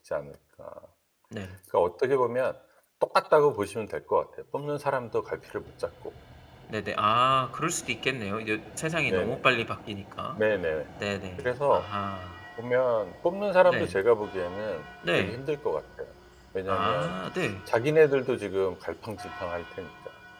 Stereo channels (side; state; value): both; identical; correlation 1.00